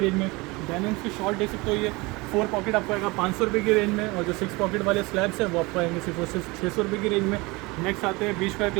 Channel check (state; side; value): quieter; left; 24.1 dB